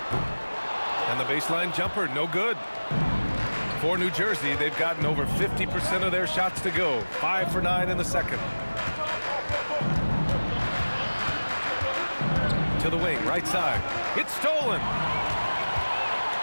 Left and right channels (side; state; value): both; inverted; correlation -1.00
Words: And the baseline jumper, no good. For New Jersey, they've gotten over 50% of their shots to go. 5 for 9 in the second. To the wing, right side. It's stolen.